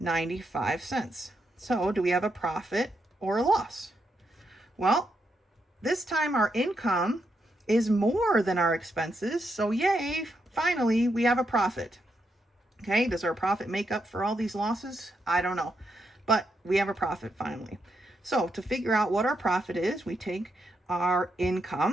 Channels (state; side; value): normal; both; correlation 0.81